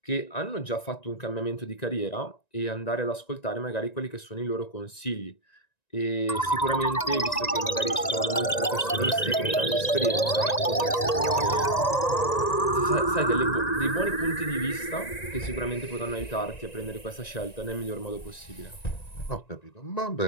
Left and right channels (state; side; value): late; right; 1.9 ms